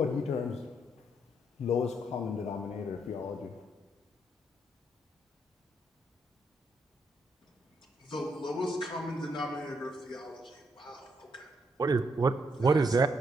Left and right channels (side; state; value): both; normal; correlation 0.76